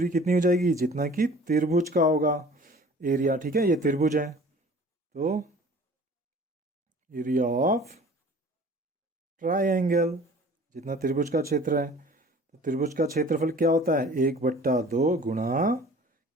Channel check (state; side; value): normal; both; correlation 0.47